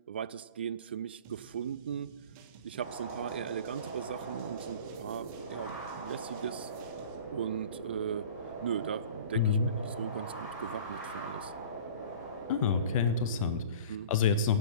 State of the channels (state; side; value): inverted; both; correlation -0.42